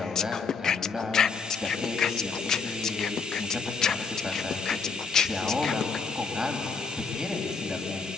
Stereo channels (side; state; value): right; quieter; 5.1 dB